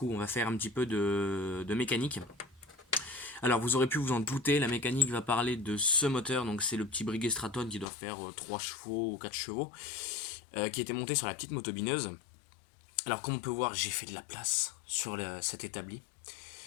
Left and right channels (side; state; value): right; drops out; at 7.9 s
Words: on va faire un petit peu de mécanique. Alors vous aurez pu vous en douter, la mécanique va parler de ce moteur, donc c'est le petit Breguet Straton qui doit faire 3 chevaux ou 4 chevaux, qui était monté sur la petite motobineuse. Alors comme on peut voir, j'ai fait de la place sur cet établi.